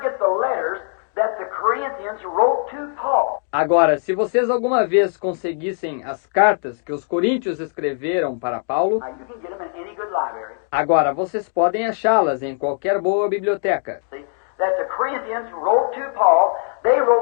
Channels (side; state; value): right; silent; 56 dB below the other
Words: get the letters that the Corinthians wrote to Paul, Agora, se vocês alguma vez conseguissem as cartas que os coríntios escreveram para Paulo, now you can get them in any good library. agora vocês podem achá-las em qualquer boa biblioteca. See, that the Corinthians wrote to Paul, they